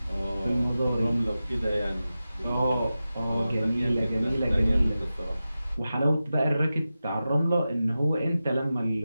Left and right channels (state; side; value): inverted; both; correlation -0.94